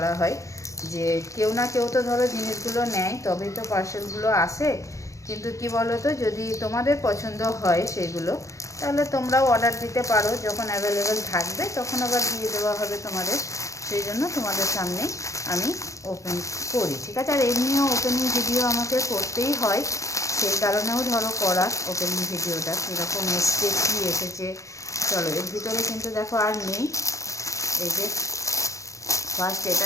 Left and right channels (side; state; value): right; late; 0.15 ms